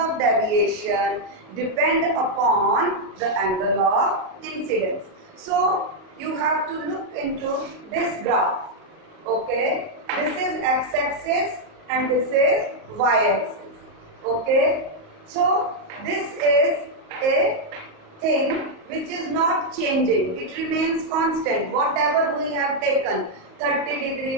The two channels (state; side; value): late; left; 38 ms